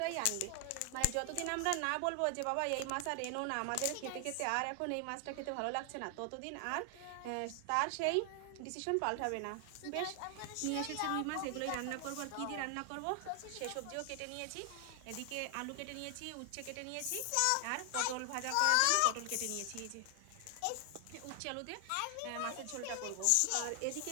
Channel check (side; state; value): both; different; correlation 0.00